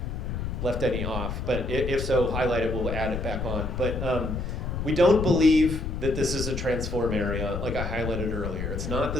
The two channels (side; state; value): left; noise; rumble, 4 dB below the sound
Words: left any off, but if so, highlight it, we'll add it back on. But we don't believe that this is a transform area, like I highlighted earlier. It's not